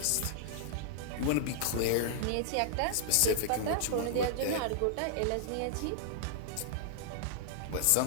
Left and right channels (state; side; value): different; both; correlation -0.01